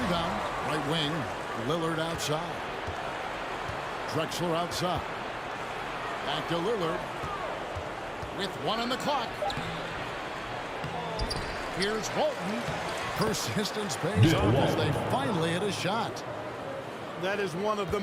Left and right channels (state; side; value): identical; both; correlation 1.00